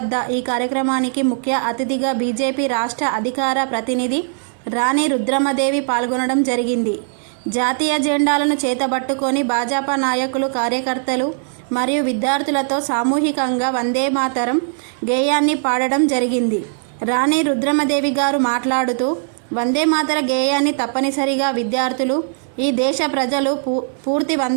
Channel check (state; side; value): silent; left; 59 dB below the other